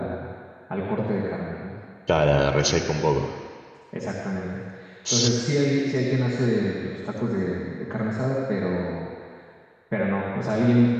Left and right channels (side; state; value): both; identical; correlation 1.00